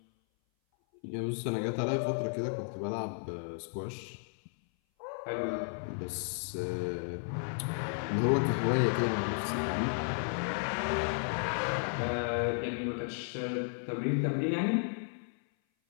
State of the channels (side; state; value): right; silent; 55 dB below the other